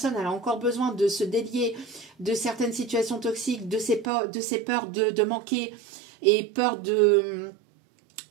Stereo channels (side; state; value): left; drops out; at 4.1 s